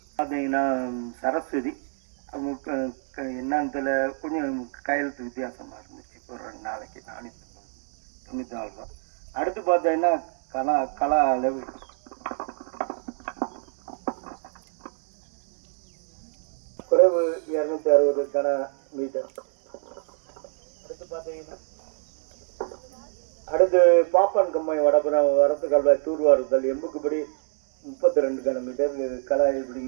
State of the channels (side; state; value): left; silent; 60 dB below the other